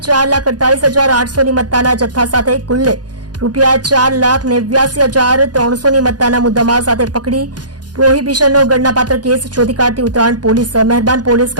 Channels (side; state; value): left; late; 0.69 ms